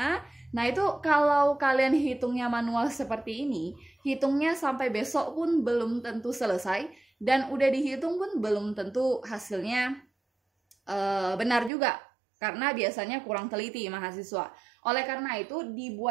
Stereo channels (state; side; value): drops out; left; at 11.7 s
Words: Nah, itu kalau kalian hitungnya manual seperti ini, hitungnya sampai besok pun belum tentu selesai, dan udah dihitung pun belum tentu hasilnya benar juga, karena biasanya kurang teliti mahasiswa. Oleh karena itu